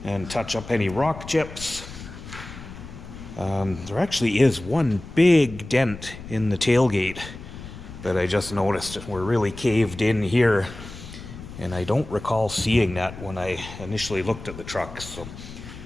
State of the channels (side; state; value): left; noise; rumble, 13 dB below the sound